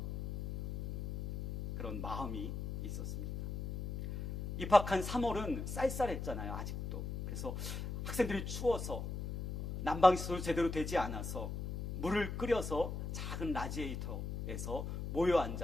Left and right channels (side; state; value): left; noise; hum, 5 dB below the sound